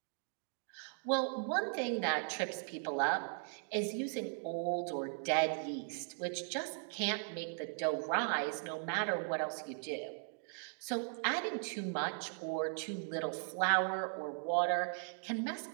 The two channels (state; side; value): silent; left; 52 dB below the other